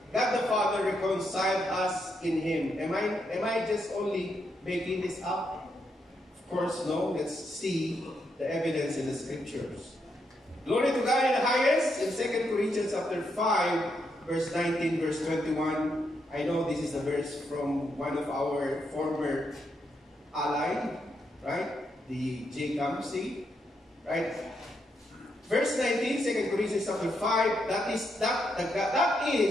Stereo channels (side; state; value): both; normal; correlation 0.80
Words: God the Father reconciled us in Him. Am I just only making this up? Of course, no. Let's see the evidence in the Scriptures. Glory to God in the highest. In 2 Corinthians chapter 5, verse 19, verse 21. I know this is a verse from one of our former ally, right? The J. Campsey, right? Verse 19, 2 Corinthians chapter 5, that is